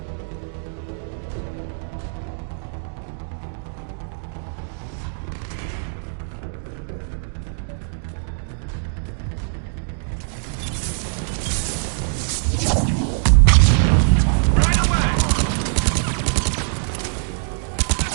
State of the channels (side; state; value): left; silent; digital silence